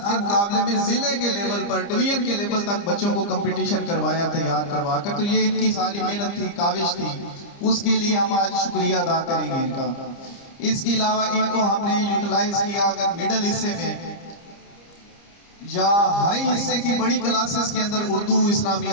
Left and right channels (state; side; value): late; right; 30 ms